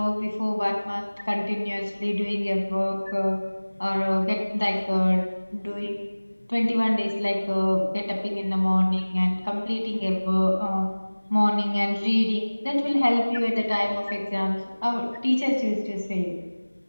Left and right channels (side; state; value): both; inverted; correlation -1.00